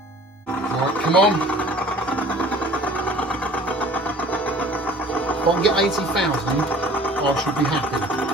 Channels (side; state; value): both; normal; correlation 0.48